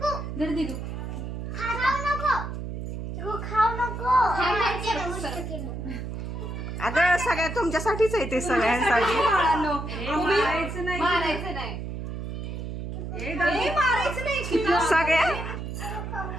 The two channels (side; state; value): right; noise; hum, 6 dB below the sound